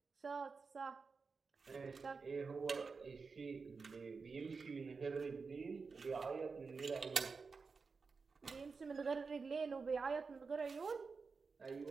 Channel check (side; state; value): left; quieter; 4.8 dB